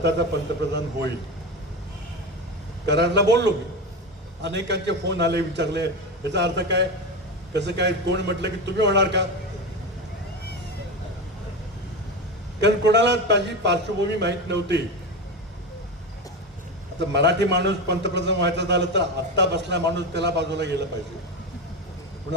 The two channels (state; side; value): normal; both; correlation 0.20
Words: पंतप्रधान होईल. करारला बोललो मी. अनेकांचे फोन आले, विचारले याचा अर्थ काय, कसं काय. कोण म्हटलं की तुम्ही होणार का. कारण कोणाला माझी पार्श्वभूमी माहीत नव्हती. आता मराठी माणूस पंतप्रधान व्हायचा झालं तर आत्ता बसला माणूस त्याला बाजूला गेलं पाहिजे.